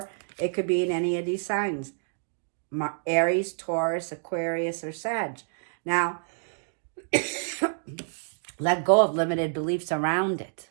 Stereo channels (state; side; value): silent; left; digital silence